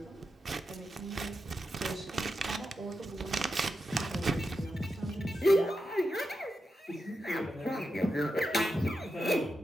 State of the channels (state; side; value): normal; both; correlation 0.88